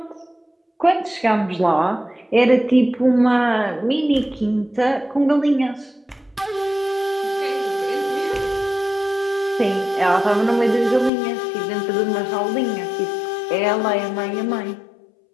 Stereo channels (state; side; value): drops out; right; at 11.1 s